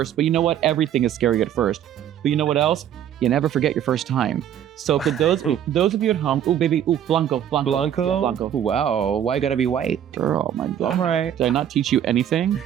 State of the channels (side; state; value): left; quieter; 10.2 dB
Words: but you know what? Everything is scary at first. But you know what else? You never forget your first time. So for those of you at home, Blanco. Wow, why gotta be white? Girl, my God. All right. Did I not teach you anything?